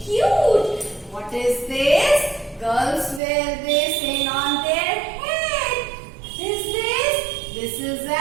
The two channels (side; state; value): left; drops out; at 3.2 s